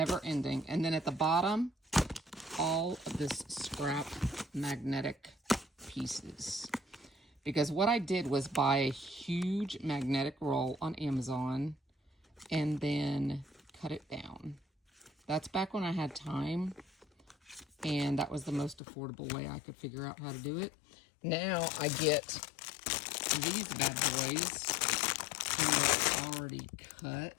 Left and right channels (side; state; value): right; drops out; at 18.8 s